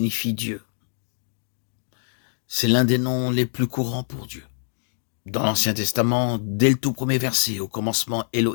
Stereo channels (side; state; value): right; silent; digital silence